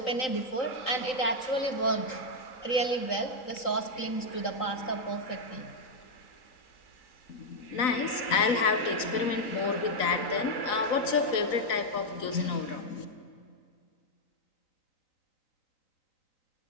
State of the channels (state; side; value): late; right; 4.0 ms